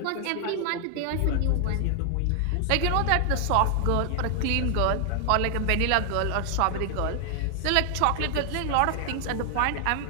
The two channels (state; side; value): different; both; correlation 0.00